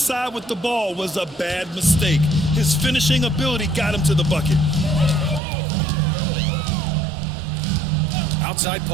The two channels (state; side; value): drops out; left; at 5.4 s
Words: with the ball was a bad mistake. His finishing ability got him to the bucket. Outside